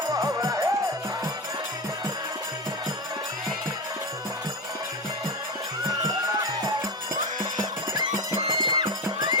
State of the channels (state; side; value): normal; both; correlation 0.17